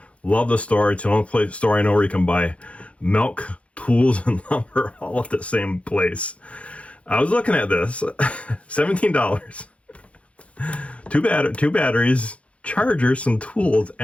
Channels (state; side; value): late; right; 0.063 ms